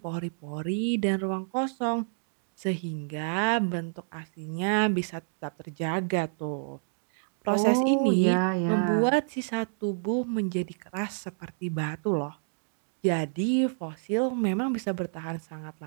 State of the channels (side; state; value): left; silent; digital silence